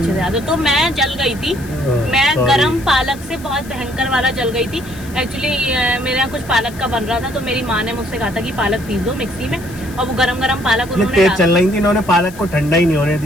से याद है। तो मैं जल गई थी, मैं गरम पालक से बहुत भयंकर वाला जल गई थी। एक्चुअली मेरे यहाँ कुछ पालक का बन रहा था, तो मेरी माँ ने मुझसे कहा था कि पालक पीस दो मिक्सी में, और वो गरम पालक उन्होंने तेज चल रही थी, इन्होंने पालक को ठंडा ही नहीं होने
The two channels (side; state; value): left; noise; hiss, 20 dB below the sound